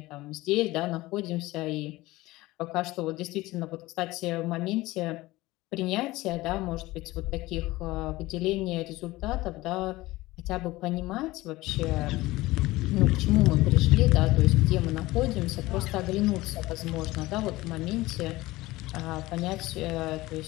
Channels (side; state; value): right; quieter; 19.1 dB